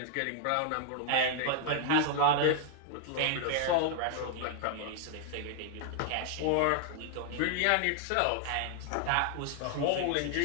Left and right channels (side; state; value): both; different; correlation -0.01